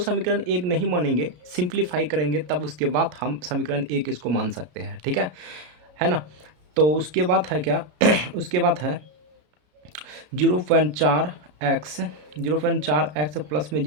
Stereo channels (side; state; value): left; late; 33 ms